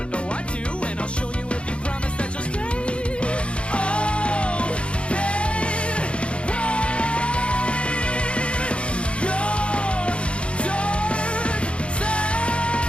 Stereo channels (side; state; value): right; late; 0.059 ms